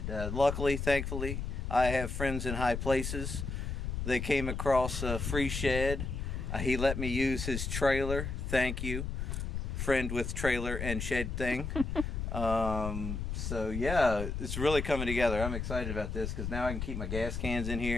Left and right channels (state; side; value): noise; left; rumble, 3 dB below the sound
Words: Luckily, thankfully, I have friends in high places. They came across a free shed. He let me use his trailer. Thank you, friend with trailer and shed thing. So yeah, it's really coming together. I'm excited about this because now I can keep my gas cans in